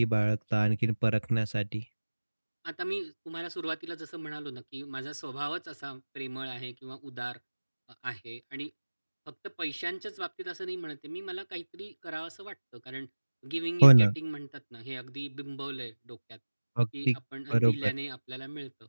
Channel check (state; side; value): inverted; both; correlation -1.00